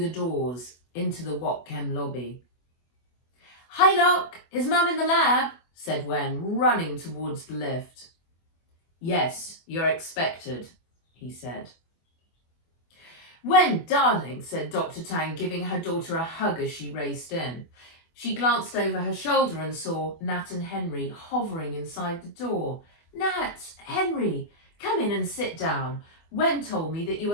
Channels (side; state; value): right; late; 24 ms